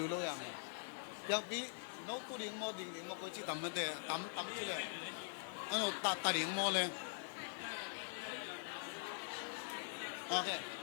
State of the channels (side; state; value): right; silent; digital silence